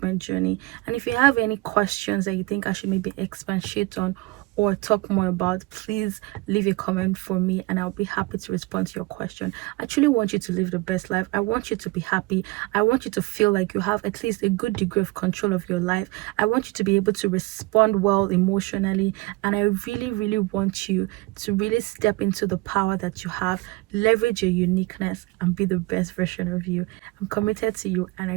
journey. And if you have any questions that you think I should maybe expatiate on or talk more about, please leave a comment for me and I'll be happy to respond to your question. I truly want you to live the best life. I want you to be happy. I want you to feel like you have at least a good degree of control of your life. I want you to be able to respond well emotionally, and I really, really want you to really step into the power that you have, leverage your uniqueness, and be the best version of you. I'm committed to you and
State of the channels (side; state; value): left; quieter; 21.8 dB